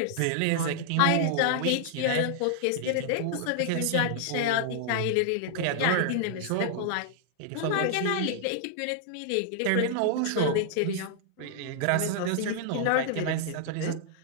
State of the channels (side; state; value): both; different; correlation -0.01